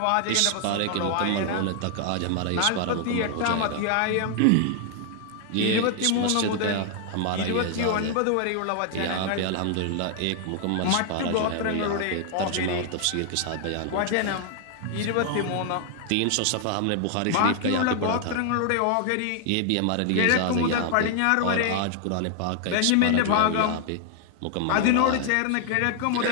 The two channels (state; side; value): different; both; correlation 0.00